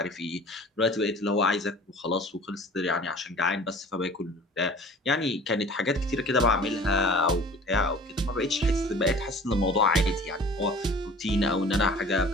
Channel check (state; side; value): normal; both; correlation 0.46